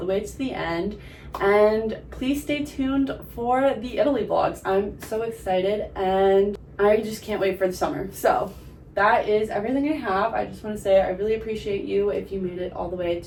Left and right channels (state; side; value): identical; both; correlation 1.00